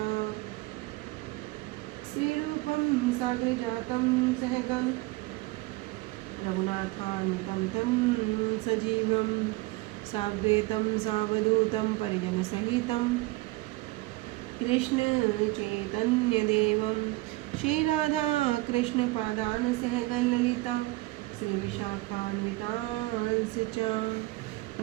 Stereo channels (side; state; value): left; quieter; 21.0 dB